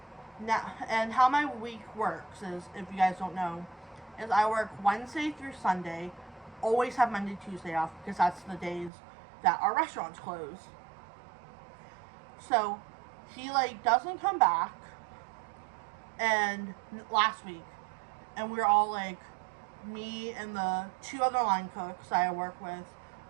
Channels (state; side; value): drops out; left; at 8.9 s